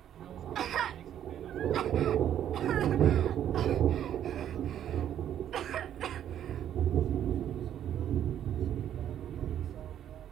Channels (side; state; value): left; quieter; 10.4 dB